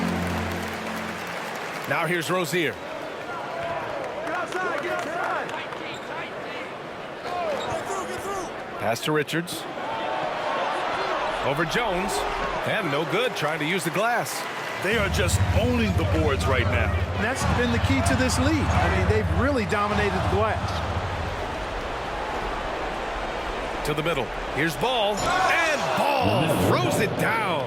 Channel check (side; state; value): both; identical; correlation 1.00